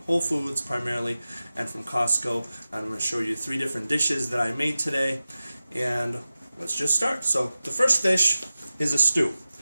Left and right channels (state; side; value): inverted; both; correlation -0.95